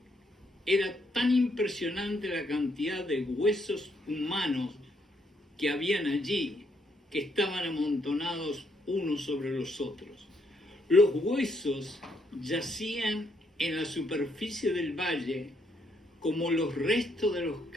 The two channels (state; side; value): normal; both; correlation 0.73